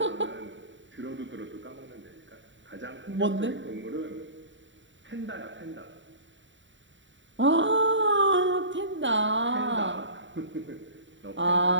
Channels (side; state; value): left; late; 0.54 ms